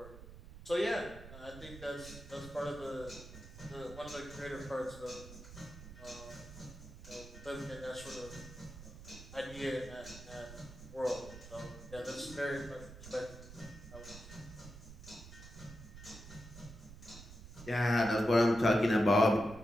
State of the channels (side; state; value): right; noise; rumble, 15 dB below the sound